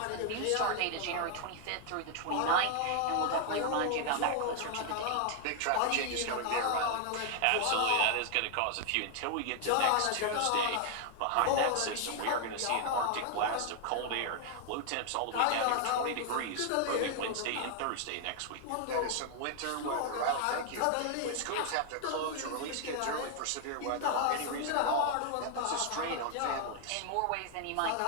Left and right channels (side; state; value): both; different; correlation 0.00